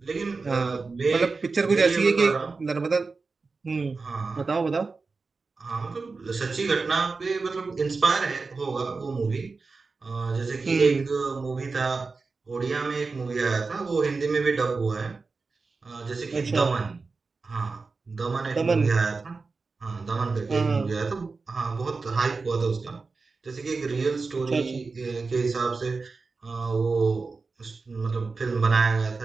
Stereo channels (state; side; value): quieter; left; 4.2 dB